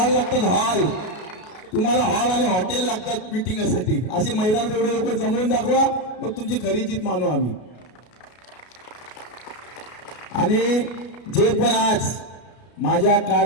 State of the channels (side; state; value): right; late; 33 ms